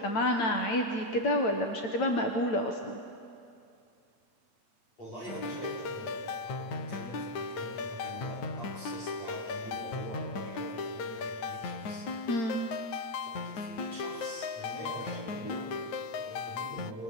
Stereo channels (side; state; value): right; late; 9.2 ms